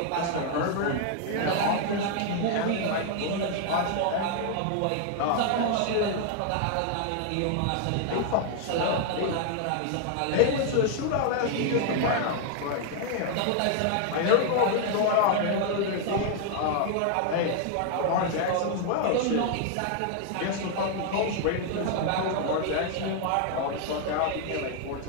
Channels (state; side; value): different; both; correlation 0.00